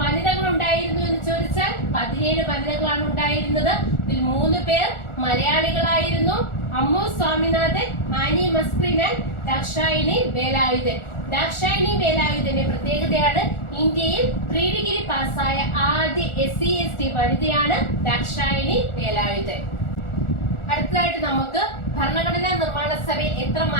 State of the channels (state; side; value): late; right; 1.4 ms